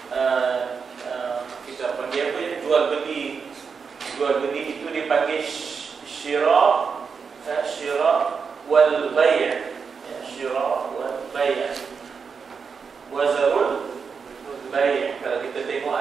kita panggil apa ya, jual beli itu dipanggil syira wal bay', syira wal bay', wazarul bay'. Kalau kita tengok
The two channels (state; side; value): quieter; left; 5.7 dB